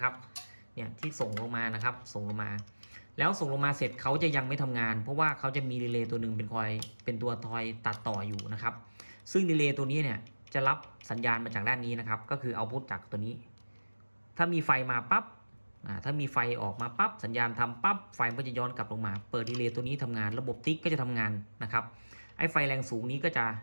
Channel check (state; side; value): inverted; both; correlation -1.00